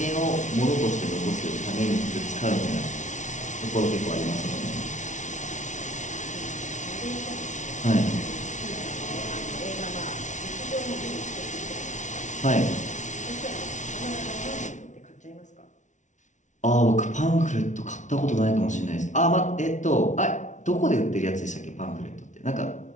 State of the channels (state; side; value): late; right; 0.36 ms